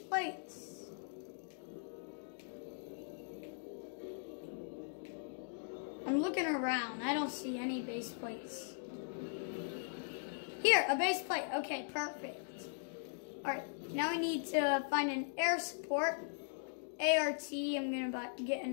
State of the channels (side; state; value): right; silent; digital silence